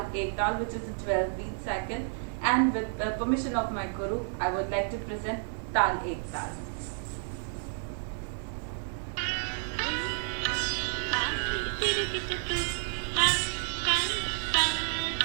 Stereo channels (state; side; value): silent; left; 57 dB below the other